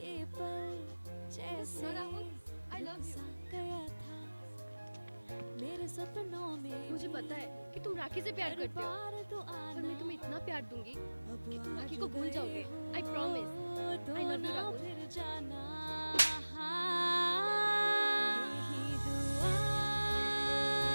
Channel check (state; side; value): inverted; both; correlation -1.00